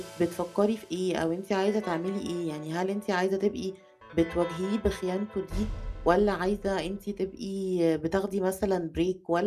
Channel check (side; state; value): both; identical; correlation 1.00